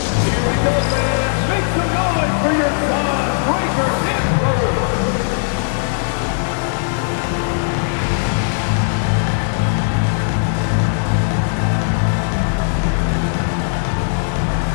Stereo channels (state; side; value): silent; right; 64 dB below the other